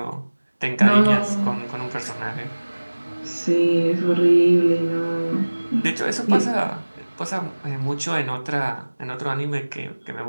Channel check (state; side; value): inverted; both; correlation -1.00